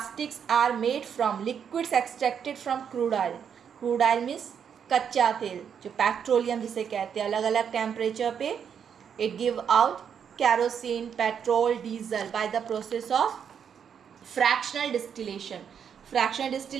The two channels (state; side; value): quieter; left; 7.7 dB